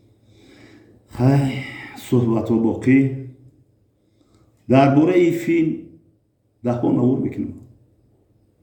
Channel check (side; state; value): both; identical; correlation 1.00